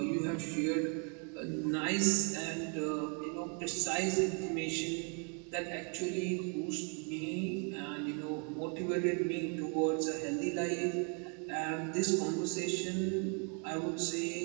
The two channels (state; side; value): quieter; left; 38.7 dB